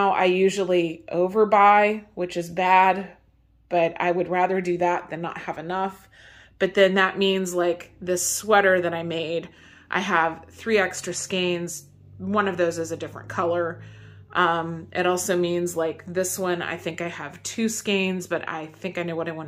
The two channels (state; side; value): identical; both; correlation 1.00